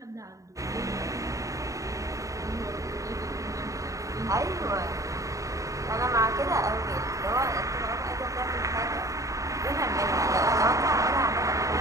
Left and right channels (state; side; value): late; left; 0.16 ms